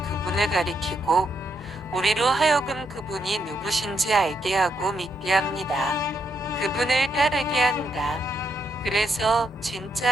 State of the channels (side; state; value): both; normal; correlation 0.78